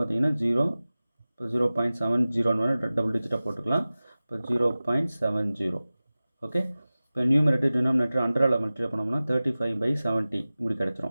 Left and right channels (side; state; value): both; inverted; correlation -0.97